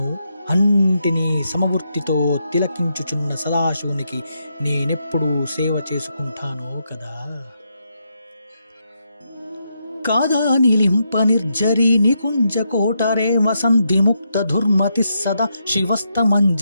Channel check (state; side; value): inverted; both; correlation -0.81